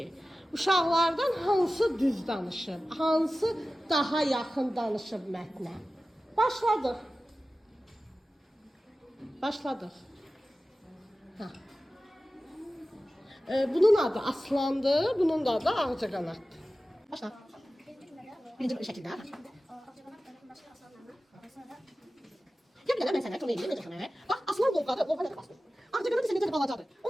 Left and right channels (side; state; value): both; normal; correlation 0.95